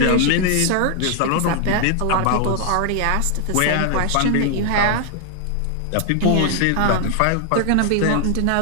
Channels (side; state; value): both; different; correlation 0.00